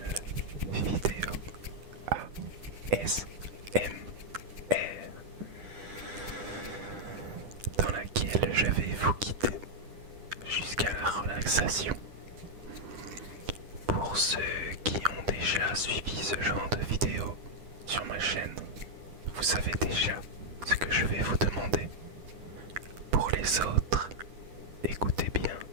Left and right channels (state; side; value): late; left; 10 ms